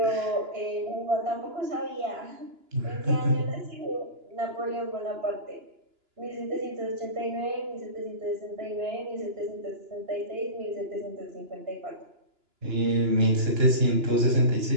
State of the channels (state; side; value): late; left; 2.9 ms